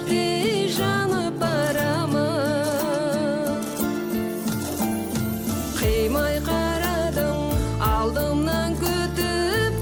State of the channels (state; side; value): identical; both; correlation 1.00